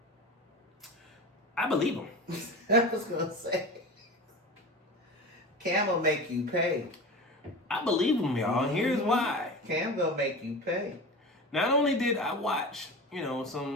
I believe him. I was going to say, Cam will make you pay. I believe him, y'all. Here's why. Cam gonna make you pay. Not only did I watch,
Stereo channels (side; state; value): both; normal; correlation 0.30